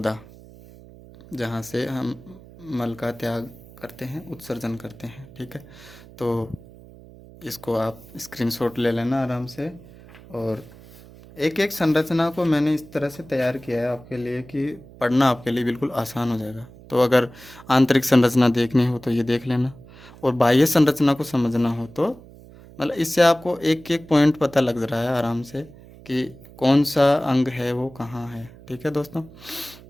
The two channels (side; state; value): right; noise; hum, 20 dB below the sound